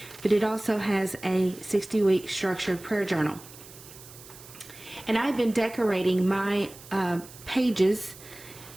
but it also has a 60-week structured prayer journal. And I've been decorating my pages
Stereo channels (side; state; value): right; noise; hiss, 18 dB below the sound